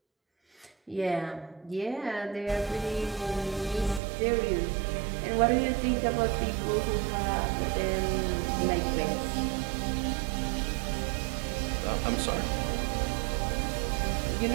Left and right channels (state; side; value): drops out; left; at 4.0 s